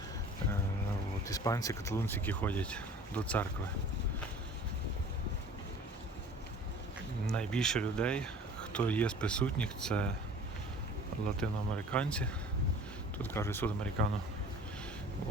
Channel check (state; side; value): normal; both; correlation 0.46